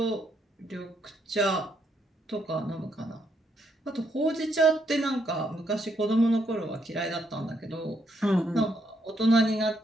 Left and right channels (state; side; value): normal; both; correlation 0.76